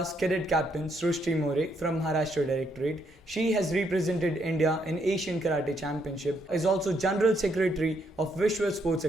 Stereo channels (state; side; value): normal; both; correlation 0.74